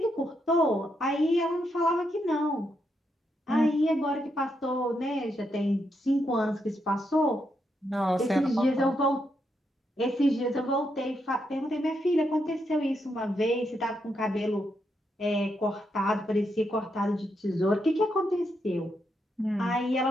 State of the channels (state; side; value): normal; both; correlation 0.81